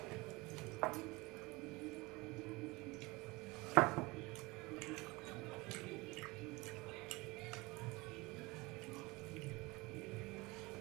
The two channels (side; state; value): left; quieter; 23.5 dB